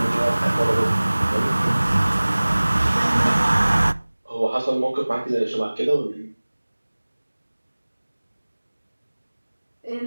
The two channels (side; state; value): both; inverted; correlation -1.00